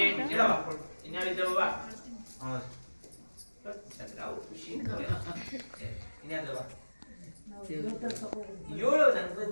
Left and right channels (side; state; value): both; inverted; correlation -1.00